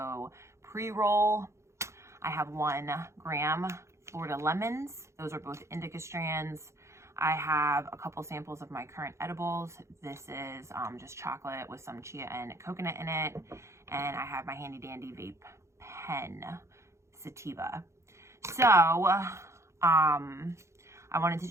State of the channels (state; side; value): late; left; 0.14 ms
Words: pre-roll. I have 1 gram Florida lemons. Those are both indica strands. I have a couple samples of my current edibles. This is just chocolate with some chia and coconut in it. And I have my handy dandy vape pen, sativa. So, I wanted to